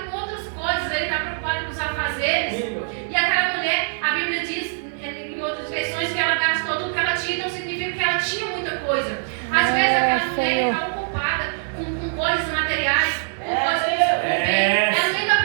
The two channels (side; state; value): left; silent; 64 dB below the other